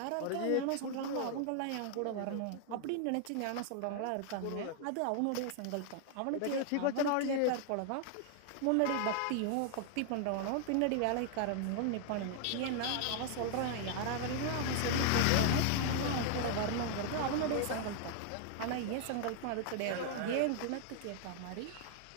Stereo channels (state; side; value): different; both; correlation 0.00